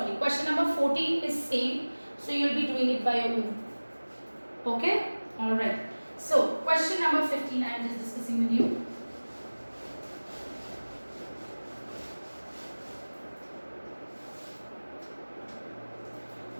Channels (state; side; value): inverted; both; correlation -1.00